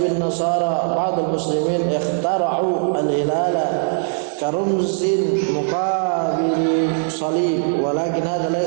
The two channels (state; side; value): silent; left; 66 dB below the other